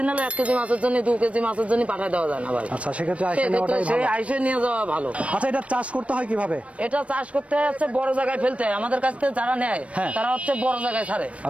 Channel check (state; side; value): late; left; 0.063 ms